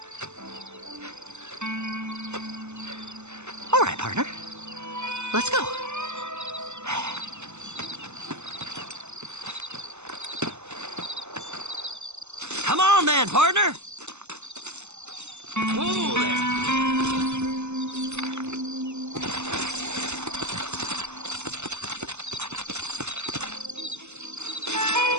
All right, partner. Let's go. Come on then, partner. Whoa there.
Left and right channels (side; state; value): left; late; 0.82 ms